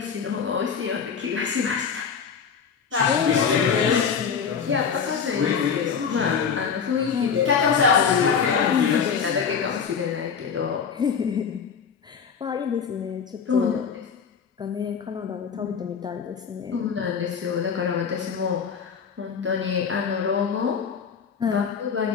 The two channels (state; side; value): quieter; right; 6.6 dB